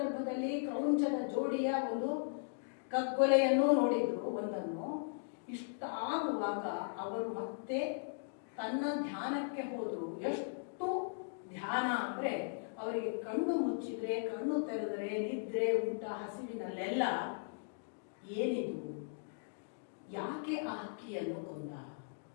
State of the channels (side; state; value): right; silent; digital silence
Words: ಕ್ರೌಂಚದ ಜೋಡಿಯ ಒಂದು ಕಗ್ಗೊಲೆಯನ್ನು ನೋಡಿದ್ರು ಒಂದನ್ನು. ಇಷ್ಟ ಆಗುವಾಗ ಅವರು ಮತ್ತೆ ತನ್ನ ಧ್ಯಾನಕ್ಕೆ ಹೋದ್ರು. ಎಷ್ಟು ಧ್ಯಾನ ಅಂದ್ರೆ ಅವರಿಗೆ ಕಣ್ಣು ಮುಚ್ಚಿದ್ರೆ, ಕಣ್ಣು ತೆರೆದರೆ, ನಿದ್ರೆ, ಊಟ, ಹಸಿವಿನಲ್ಲೆಲ್ಲ ಏನಿದು, ಯಾಕೆ ಆ ಹಕ್ಕಿಯನ್ನು ಕೊಂದ,